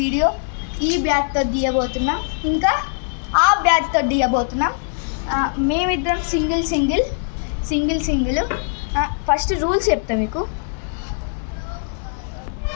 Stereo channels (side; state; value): right; silent; digital silence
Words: ఈ బ్యాట్తో తీయబోతున్నాం, ఇంకా ఆ బ్యాట్తో తీయబోతున్నాం. మేమిద్దరం సింగిల్. ఫస్ట్ రూల్స్ చెప్తాం మీకు.